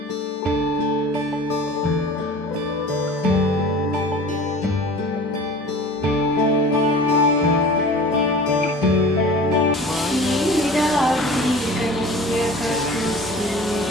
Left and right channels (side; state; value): both; normal; correlation 0.41